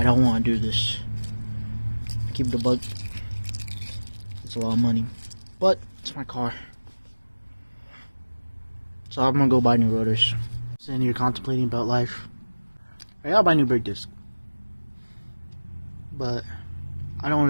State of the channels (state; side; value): inverted; both; correlation -1.00